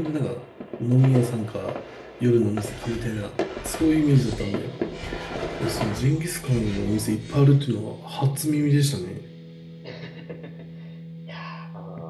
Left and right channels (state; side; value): identical; both; correlation 1.00